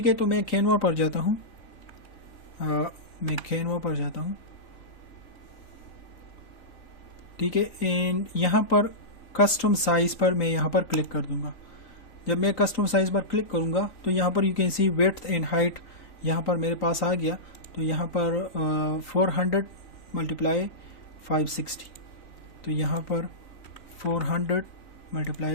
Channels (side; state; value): right; late; 3.9 ms